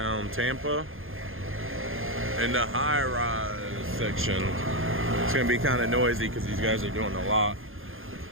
Tampa, in the high-rise section. It's going to be kind of noisy because these guys are doing a lot.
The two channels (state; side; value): late; left; 0.60 ms